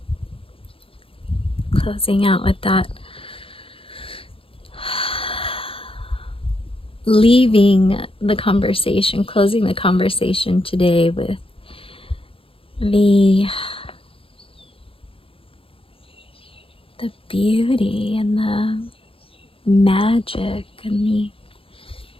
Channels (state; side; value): late; right; 0.27 ms